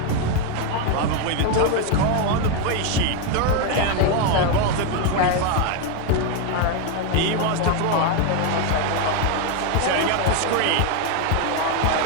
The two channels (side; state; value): both; different; correlation 0.01